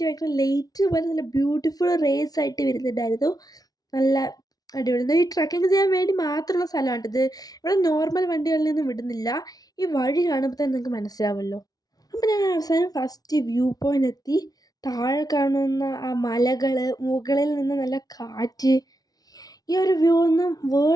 ഭയങ്കര ലൈറ്റ് പോലെ നല്ല ബ്യൂട്ടിഫുൾ റേസ് ആയിട്ട് വരുന്നുണ്ടായിരുന്നു. നല്ല അടിപൊളി. ഈ ട്രക്കിങ് ചെയ്യാൻ വേണ്ടി മാത്രമുള്ള സ്ഥലമാണ് ഇത്. ഇവിടെ നോർമൽ വണ്ടികളിൽ നിന്നും വിടുന്നില്ല. ഈ വഴി കാണുമ്പോൾ തന്നെ നിങ്ങൾക്ക് മനസ്സിലാവുമല്ലോ. അപ്പം ഞാൻ അവസാനം ഫസ്റ്റ് വ്യൂ പോയിൻ്റ് എത്തി. താഴെ കാണുന്ന ആ മലകൾ, മുകളിൽ നിന്ന് നല്ല കാറ്റ്, ഈ ഒരു വ്യൂ ഒന്നും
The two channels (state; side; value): late; right; 0.18 ms